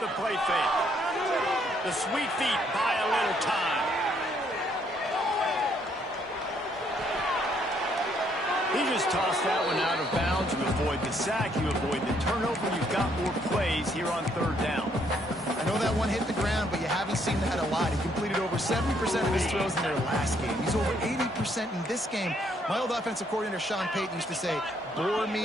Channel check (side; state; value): both; normal; correlation 0.69